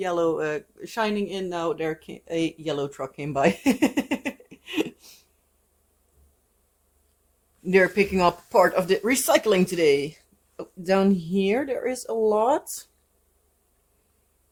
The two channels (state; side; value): identical; both; correlation 1.00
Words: shining in now, a yellow truck came by. They're picking up part of the recycling today. Down here there is a lot.